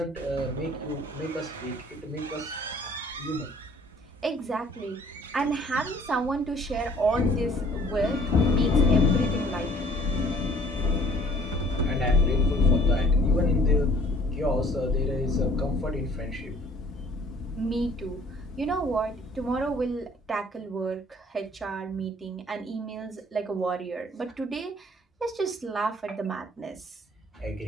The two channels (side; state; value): both; normal; correlation 0.55